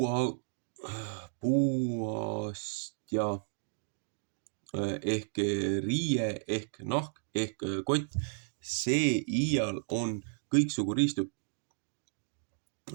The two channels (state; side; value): silent; left; digital silence